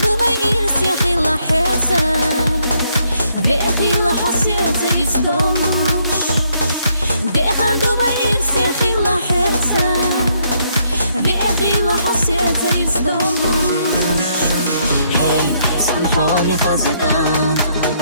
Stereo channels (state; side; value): inverted; both; correlation -0.72